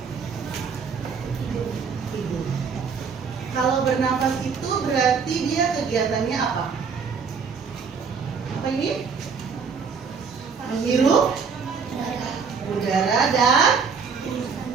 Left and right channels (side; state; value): left; quieter; 5.7 dB